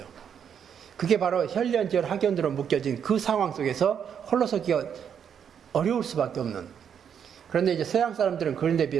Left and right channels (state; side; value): quieter; left; 8.0 dB